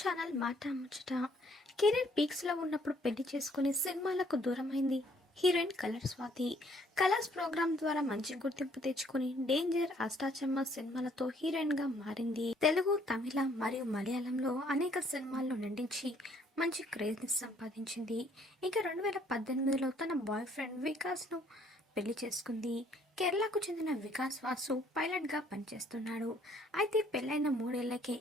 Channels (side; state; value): both; normal; correlation 0.63